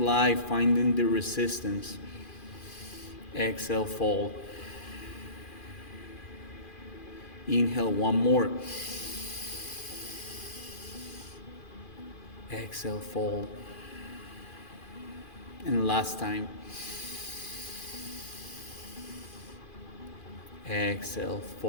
finding the resistance. Exhale, fold. Inhale, one more. Exhale, fold. And last time. Exhale,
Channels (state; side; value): late; right; 2.4 ms